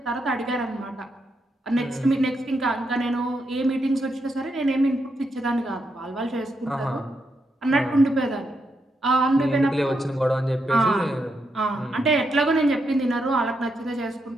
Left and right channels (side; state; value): both; normal; correlation 0.81